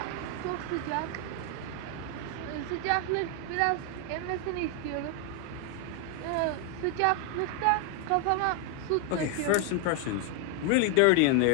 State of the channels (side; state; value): both; different; correlation 0.01